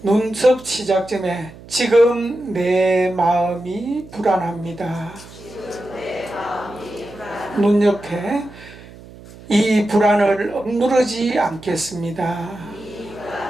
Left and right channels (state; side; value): noise; right; hum, 19 dB below the sound